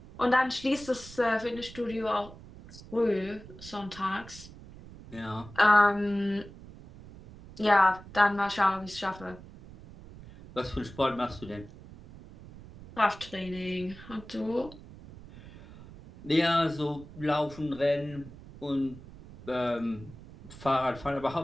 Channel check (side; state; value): right; noise; rumble, 17 dB below the sound